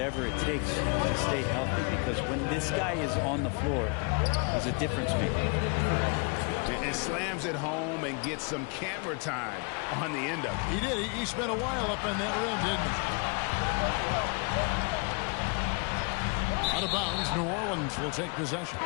it takes to stay healthy, because when this guy is on the floor, he's a difference maker. And slams it home and gets some camera time on the end of it. He did. He spent a while up on that rim, didn't he? Out of bounds, New Orleans will take possession.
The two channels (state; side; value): quieter; right; 34.1 dB